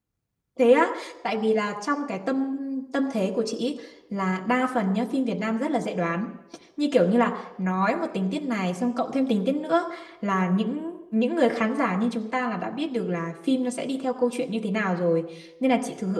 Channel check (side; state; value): both; identical; correlation 1.00